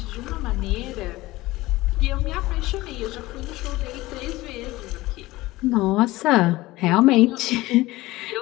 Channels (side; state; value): right; quieter; 18.9 dB